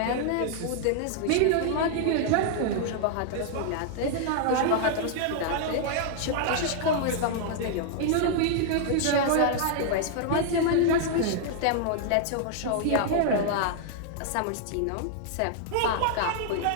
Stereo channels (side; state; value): both; different; correlation -0.01